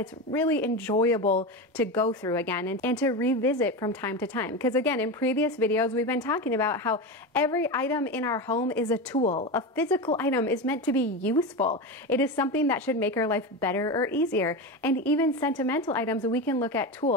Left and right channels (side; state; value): both; normal; correlation 0.20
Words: really enjoyable to go through again and to revisit from time to time. Because again, in previous videos, we've been talking about how every item in our home is a tool. A physical item is meant to be useful. It is something that should make our life better or easier. And even sentimental items, we can look at